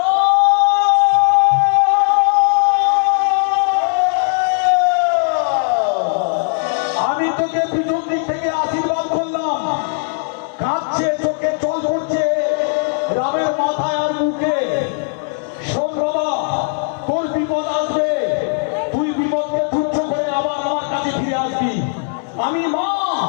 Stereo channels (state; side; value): silent; right; 61 dB below the other